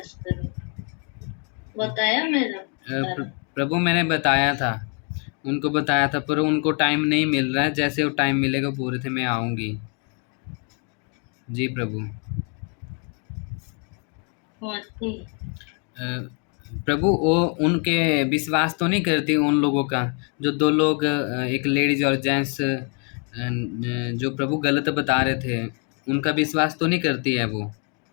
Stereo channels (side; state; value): right; quieter; 37.8 dB